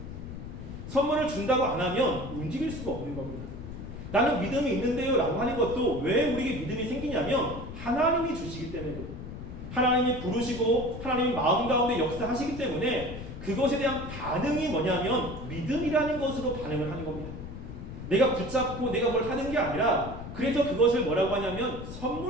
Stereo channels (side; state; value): left; noise; rumble, 10 dB below the sound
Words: 선물을 준다고 안 하면 움직일 수가 없는 겁니다. 나는 믿음이 있는데요 라고 하는 것도 왜 우리에게 믿음이 생기냐면 하나님이 주시기 때문에, 하나님이 부르시고 하나님이 마음 가운데 역사하시기 때문에 그것에 대한 반응이 뭐냐면 믿음이라는 것으로 반응을 하는 겁니다. 내가 붙잡고 내가 뭘 하는 게 아니라 그래서 그것을 뭐라고 하냐면